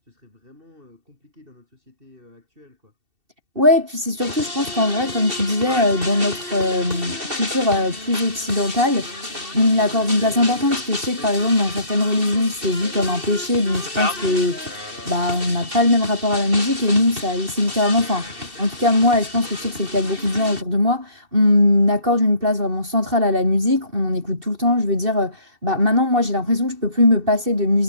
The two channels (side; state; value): left; late; 2.7 ms